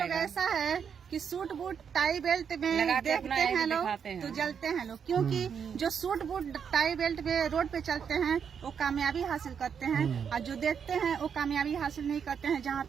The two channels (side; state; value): left; quieter; 7.2 dB